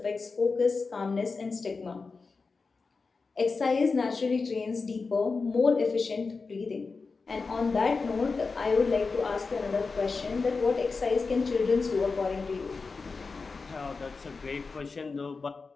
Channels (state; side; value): quieter; right; 4.4 dB